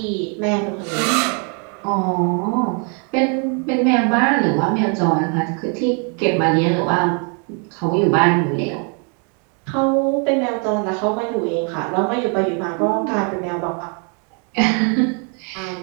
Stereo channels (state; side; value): quieter; left; 38.7 dB